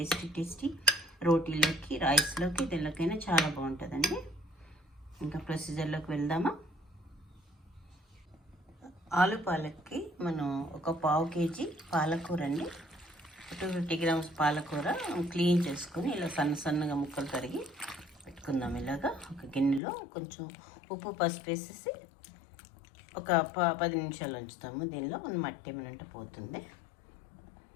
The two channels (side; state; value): right; drops out; at 19.8 s